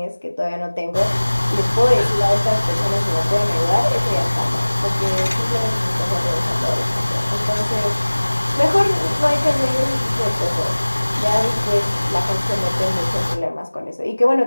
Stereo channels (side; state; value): both; inverted; correlation -1.00